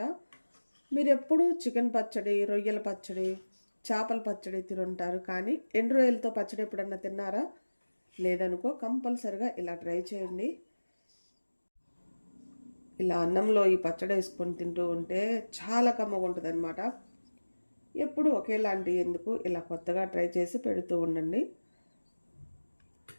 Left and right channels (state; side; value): inverted; both; correlation -1.00